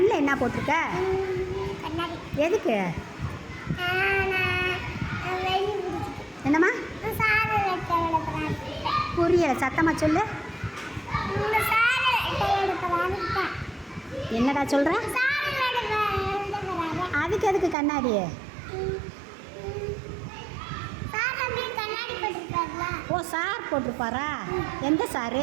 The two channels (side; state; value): left; drops out; at 17.8 s